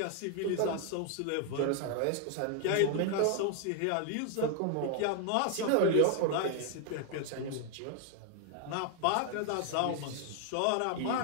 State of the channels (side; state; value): both; different; correlation 0.00